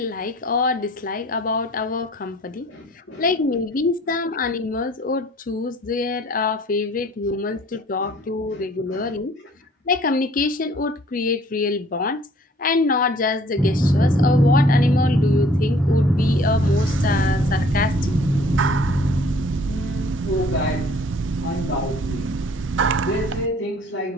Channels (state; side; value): normal; both; correlation 0.55